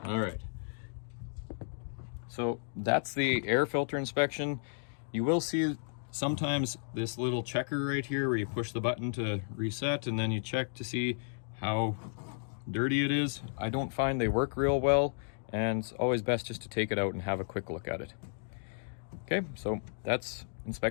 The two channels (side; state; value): right; silent; digital silence